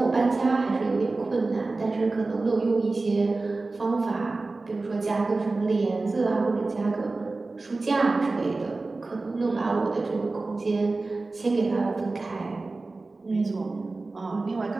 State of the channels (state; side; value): quieter; left; 3.5 dB